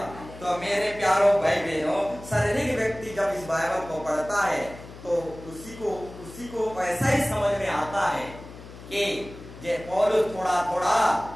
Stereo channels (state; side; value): noise; left; hum, 16 dB below the sound